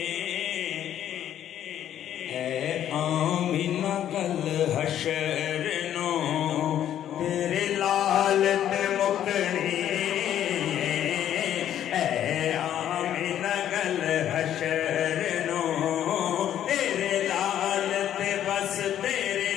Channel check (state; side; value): quieter; right; 10.8 dB